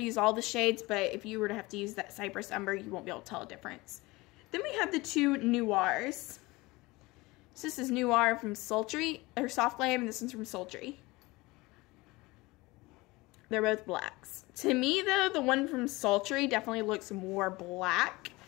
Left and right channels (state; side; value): quieter; right; 22.1 dB